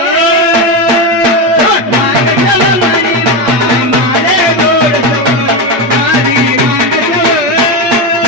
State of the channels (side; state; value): left; late; 8.7 ms